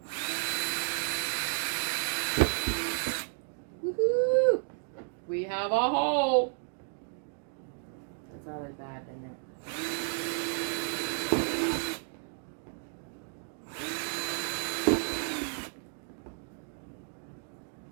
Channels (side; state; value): left; silent; 56 dB below the other